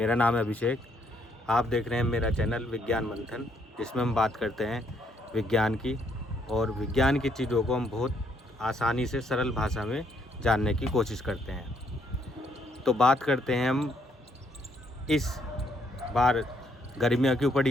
नाम है अभिषेक। आप देख रहे हैं मेरा चैनल विज्ञान मंथन, जिसमें हम बात करते हैं विज्ञान की, और विज्ञान की चीज़ों को हम बहुत आसानी से सरल भाषा में जानने की कोशिश करते हैं। तो बात करते हैं हम इस बार गर्मियाँ क्यों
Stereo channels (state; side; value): normal; both; correlation 0.72